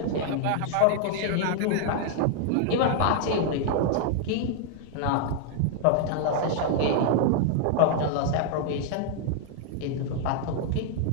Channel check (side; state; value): both; different; correlation 0.00